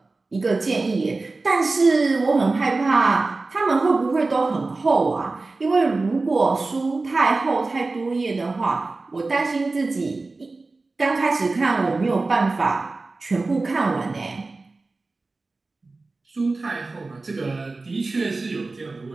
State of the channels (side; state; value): left; quieter; 3.5 dB